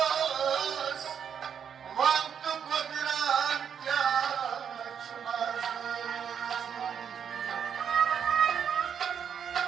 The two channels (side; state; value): left; quieter; 7.8 dB